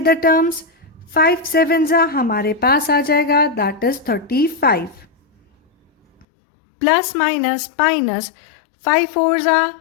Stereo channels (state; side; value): drops out; right; at 6.2 s